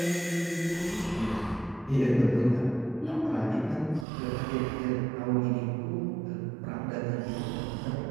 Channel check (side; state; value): left; drops out; at 4.0 s